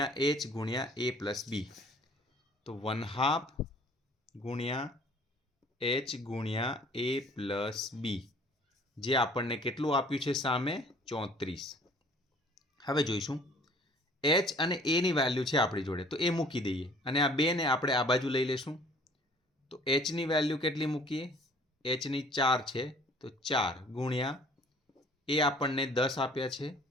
h ગુણ્યા a પ્લસ b. તો 1/2 ગુણ્યા h ગુણ્યા a પ્લસ b, જે આપણને કેટલું આપ્યું છે સામે? 34. હવે જોઈશું, h અને a ની વેલ્યુ છે આપણી જોડે, તો એ મૂકી દઈએ અને આ 2 ને આપણે આ બાજુ લઈ લેશું. તો h ની વેલ્યુ કેટલી મૂકીએ? h ની 4 છે, તો 4 ગુણ્યા એ આપણને 10 આપ્યા છે,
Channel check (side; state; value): both; normal; correlation 0.54